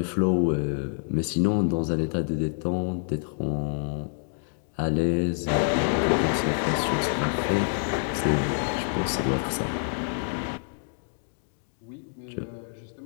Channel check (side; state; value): right; silent; digital silence